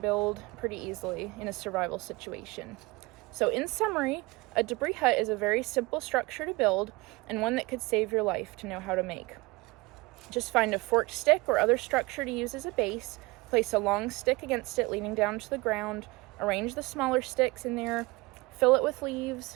pretty easily in a survival situation. So in summary, a debris hut is a very simple structure to build and one that could save your life to know how to make. Just find a forked stick or other structure to use as a base, place a long stick against it leaning down to the ground, arrange the smaller sticks in there, fill it with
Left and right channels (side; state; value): left; quieter; 23.5 dB